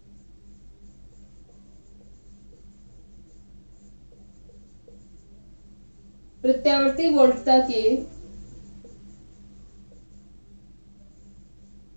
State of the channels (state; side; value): inverted; both; correlation -1.00